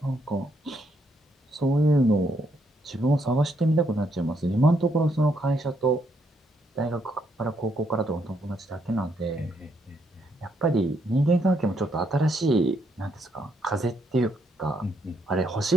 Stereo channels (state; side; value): normal; both; correlation 0.74